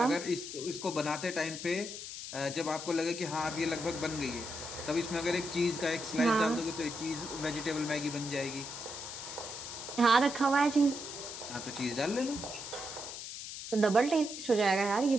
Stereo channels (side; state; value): left; noise; hiss, 9 dB below the sound